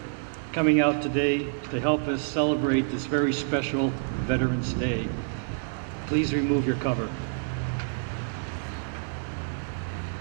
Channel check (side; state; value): left; silent; digital silence